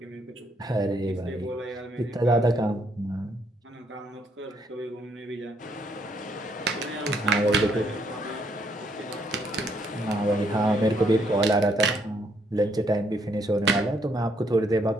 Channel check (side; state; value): both; normal; correlation 0.71